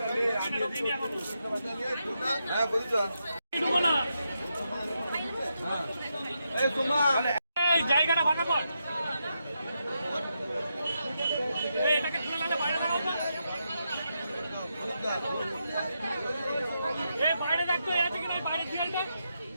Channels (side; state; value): both; inverted; correlation -0.84